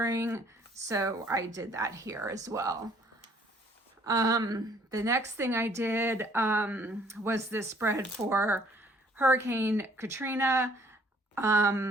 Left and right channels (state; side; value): normal; both; correlation 0.60